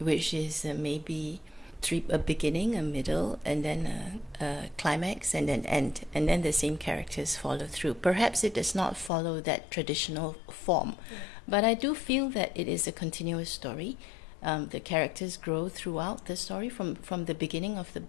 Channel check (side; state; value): right; drops out; at 9.1 s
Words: is maybe a beginning, a middle, and then a climax, and then end, and then the same characters follow through. Perhaps it does not follow that traditional form, but I do feel that it is a continuous story. The characters grow throughout the story from the beginning of the